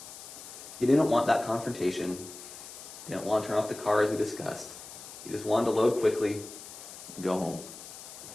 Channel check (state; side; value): noise; left; hiss, 14 dB below the sound